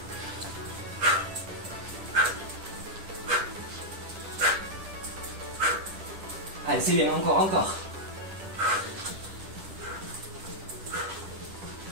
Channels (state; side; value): late; left; 10 ms